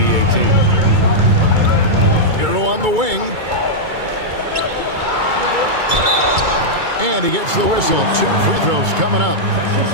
team. Hero on the wing. And he gets the whistle. 2 free throws coming up.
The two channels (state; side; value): late; left; 2.2 ms